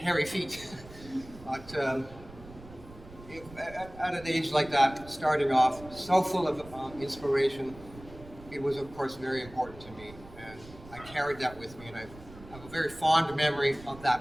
feet. But at an age like that, starting off so full of inspiration, it was, of course, very important to me. And I carried that with me, and I have a very fond memory of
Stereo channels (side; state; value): right; noise; rumble, 18 dB below the sound